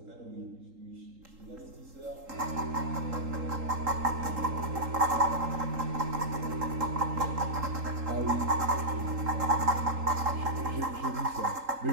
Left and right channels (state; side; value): late; left; 3.8 ms